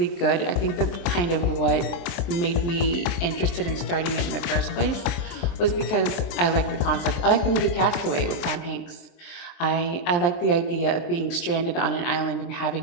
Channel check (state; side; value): late; right; 23 ms